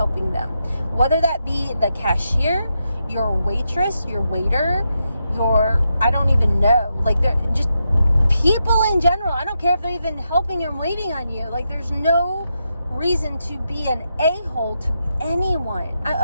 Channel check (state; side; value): inverted; both; correlation -0.85